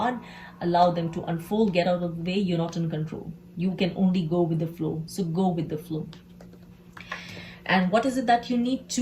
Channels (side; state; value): both; identical; correlation 1.00